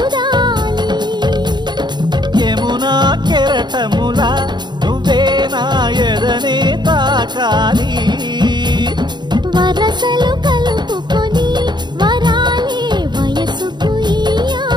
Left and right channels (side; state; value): left; late; 0.21 ms